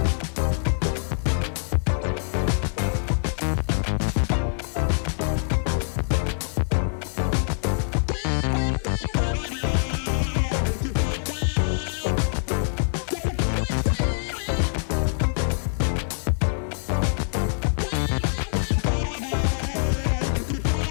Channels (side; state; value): right; silent; digital silence